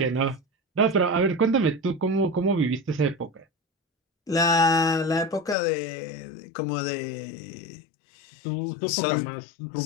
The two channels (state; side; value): drops out; right; at 5.6 s